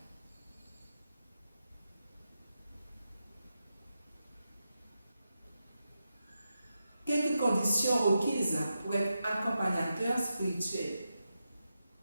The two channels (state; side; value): inverted; both; correlation -0.88